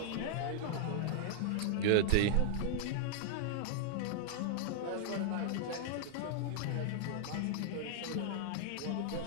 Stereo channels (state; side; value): different; both; correlation -0.01